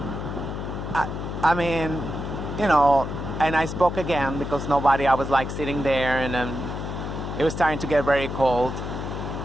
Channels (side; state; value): left; noise; hum, 5 dB below the sound